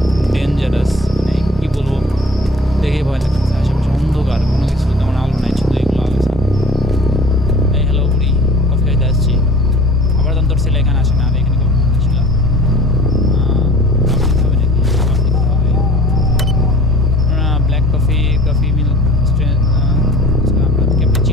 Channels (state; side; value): normal; both; correlation 0.46